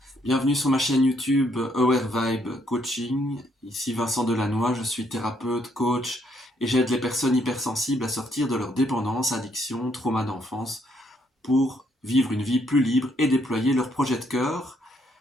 bienvenue sur ma chaîne YouTube Aware Vibe Coaching. Ici Vincent Delannoy, je suis thérapeute, coach et j'aide les personnes hypersensibles à sortir de leur dépendance, addiction, trauma d'enfance pour vivre une vie plus libre et déployer leur projet de cœur.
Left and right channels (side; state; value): both; normal; correlation 0.71